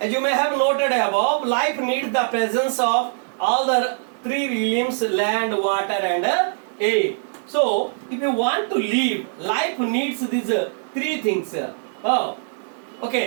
As you may have noted above, life needs the presence of all the three realms, land, water and air. So if you want to live, life needs these three things. Oh,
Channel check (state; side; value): silent; left; digital silence